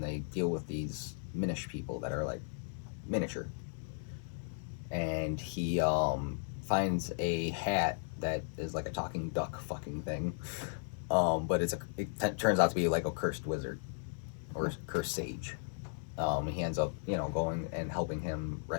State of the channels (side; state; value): right; silent; 54 dB below the other